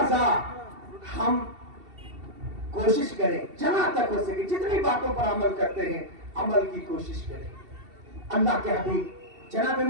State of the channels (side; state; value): left; late; 2.7 ms